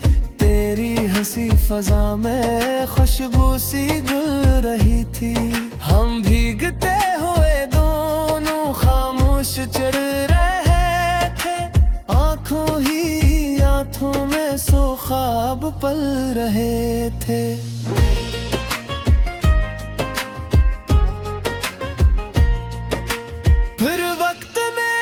तेरी हंसी फजा में खुशबू सी घुल रही थी। हम भीगते हुए दोनों खामोश चढ़ रहे थे, आंखों ही आंखों में सो ख्वाब पल रहे थे।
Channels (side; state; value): both; identical; correlation 1.00